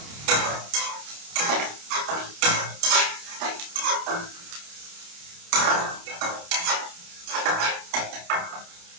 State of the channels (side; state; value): left; late; 28 ms